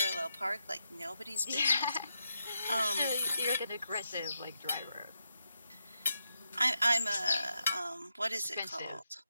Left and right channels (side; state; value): both; inverted; correlation -0.84